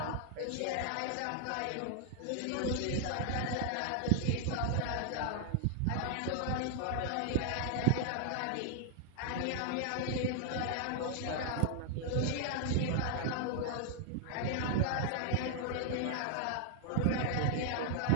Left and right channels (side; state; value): both; different; correlation 0.00